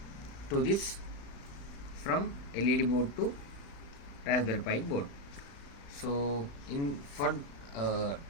to this from LED board to Raspberry Pi board. So to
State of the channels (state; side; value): late; right; 35 ms